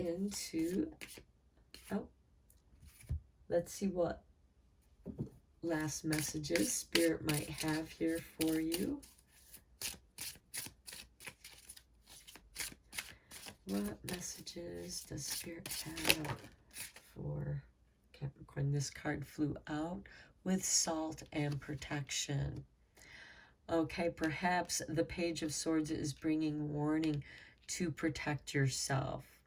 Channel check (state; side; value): identical; both; correlation 1.00